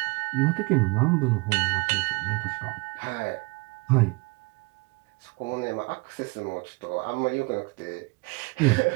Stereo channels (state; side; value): quieter; left; 27.4 dB